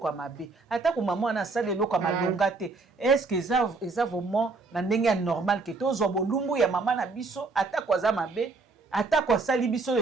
mabe ata ko mama na salelo eloko malonga te est-ce que eza vraiment na ndenge normal que tozo bolumbu ya mama na biso ata ko za mabe ata kwa sali biso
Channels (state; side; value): quieter; left; 3.9 dB